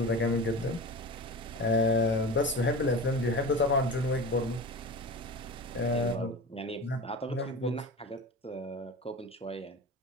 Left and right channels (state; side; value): normal; both; correlation 0.31